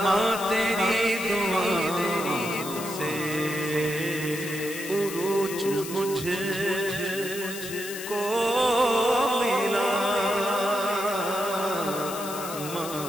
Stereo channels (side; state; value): left; noise; hiss, 10 dB below the sound